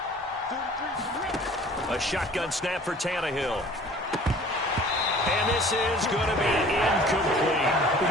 A shotgun snap for Tannehill. And this is going to be incomplete. We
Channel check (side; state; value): both; normal; correlation 0.49